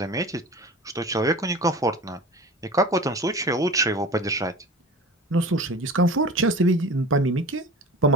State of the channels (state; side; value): normal; both; correlation 0.34